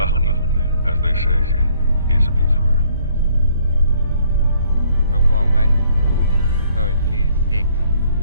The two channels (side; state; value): both; inverted; correlation -0.64